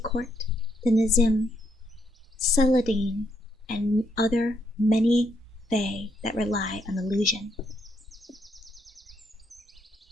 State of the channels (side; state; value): both; normal; correlation 0.75